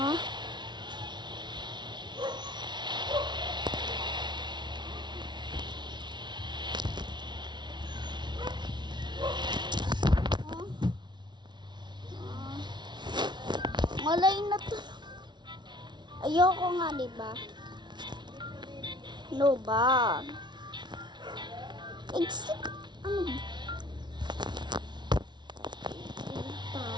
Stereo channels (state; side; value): late; left; 0.21 ms